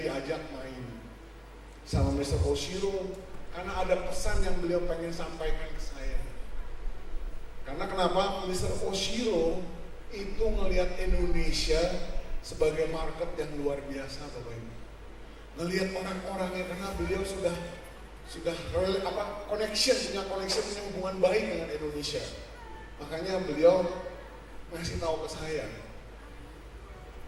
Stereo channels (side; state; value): both; identical; correlation 1.00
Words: main sama Mr. Oshiro karena ada pesan yang beliau pengen sampaikan ke saya. Karena kenapa? Mr. Oshiro itu ngelihat Indonesia sebagai market yang luar biasa Bapak Ibu. Ngelihat orang-orangnya karena beliau sudah punya hubungan baik dengan Indonesia. Makanya beliau ngasih tahu ke saya,